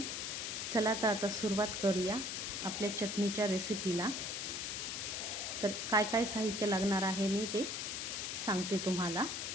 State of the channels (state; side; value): noise; left; hiss, 3 dB below the sound